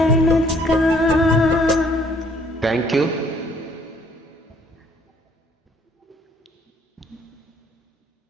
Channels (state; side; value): normal; both; correlation 0.62